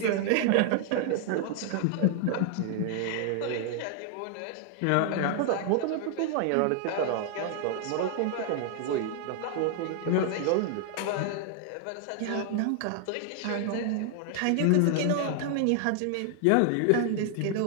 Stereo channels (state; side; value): different; both; correlation 0.00